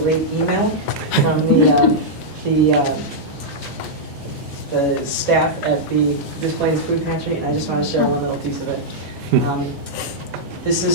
email from the staff at the Des Plaines Food Pantry, and I just want to share one little piece of it. This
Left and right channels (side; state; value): both; normal; correlation -0.07